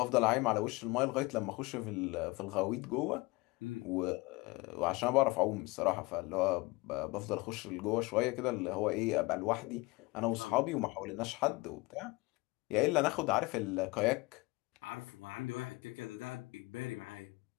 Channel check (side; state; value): right; quieter; 23.5 dB